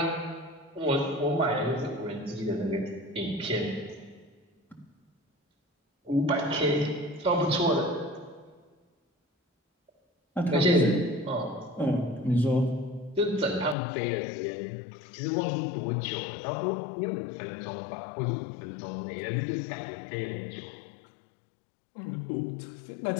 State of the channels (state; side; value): drops out; right; at 13.8 s